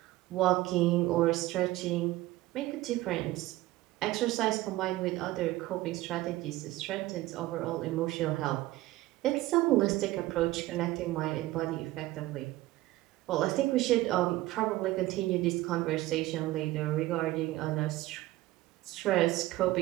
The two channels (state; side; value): quieter; left; 17.2 dB